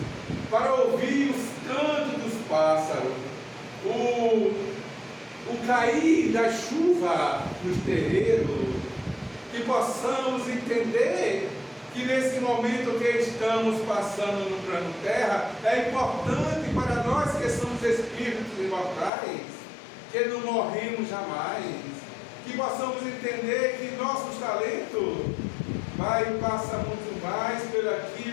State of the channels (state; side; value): drops out; right; at 19.1 s